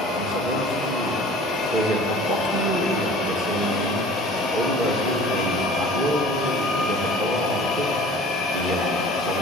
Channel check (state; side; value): normal; both; correlation 0.45